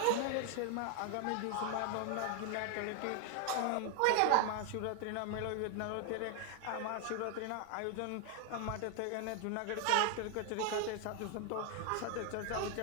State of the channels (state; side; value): different; both; correlation 0.00